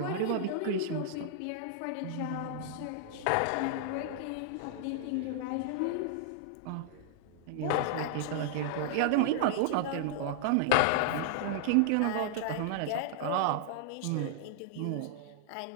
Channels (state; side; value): different; both; correlation -0.01